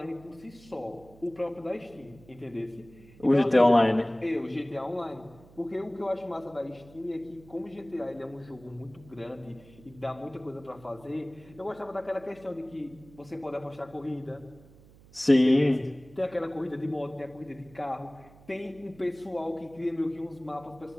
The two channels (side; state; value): right; noise; hum, 23 dB below the sound